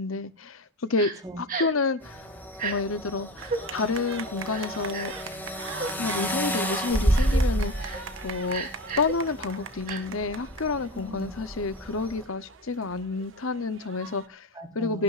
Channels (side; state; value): both; normal; correlation 0.24